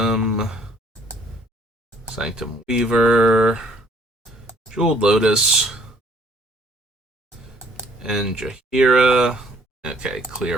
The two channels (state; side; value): normal; both; correlation 0.61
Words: Sanctum Weaver. Jeweled Lotus. And Jahira. Okay,